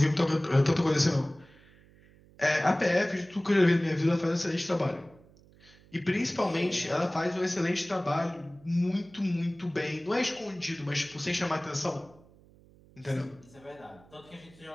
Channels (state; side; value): noise; right; hum, 26 dB below the sound